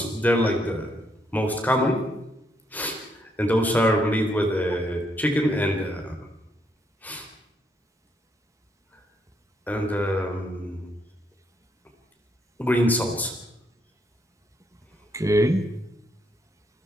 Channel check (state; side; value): normal; both; correlation 0.74